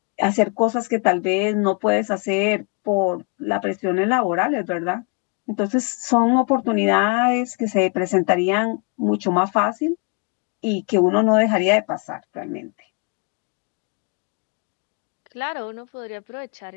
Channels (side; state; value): right; quieter; 36.7 dB